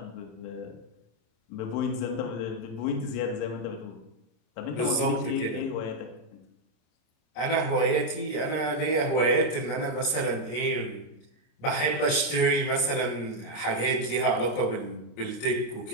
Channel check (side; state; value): right; late; 26 ms